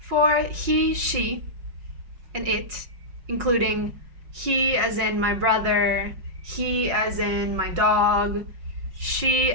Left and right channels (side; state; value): left; late; 5.5 ms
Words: he, she, and it, including he as in my brother, he as in my dog, she